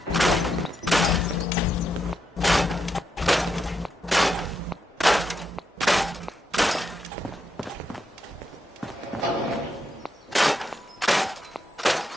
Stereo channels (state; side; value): normal; both; correlation 0.82